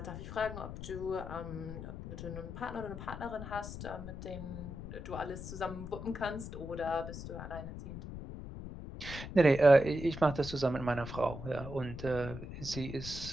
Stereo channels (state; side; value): noise; left; rumble, 9 dB below the sound